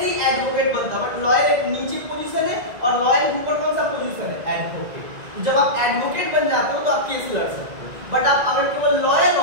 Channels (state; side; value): late; left; 2.0 ms